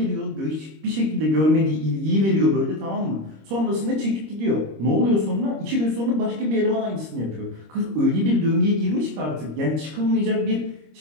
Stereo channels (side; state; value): left; late; 26 ms